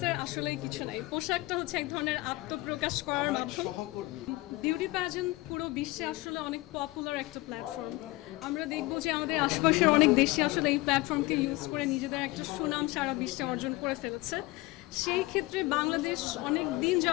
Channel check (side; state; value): right; quieter; 21.0 dB